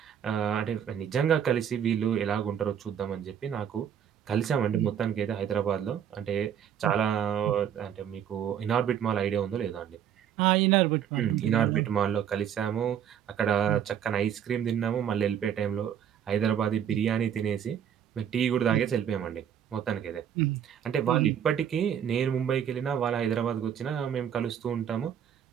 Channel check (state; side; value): quieter; left; 9.0 dB